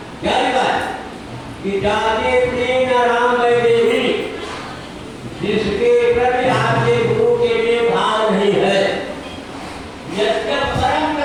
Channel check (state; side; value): identical; both; correlation 1.00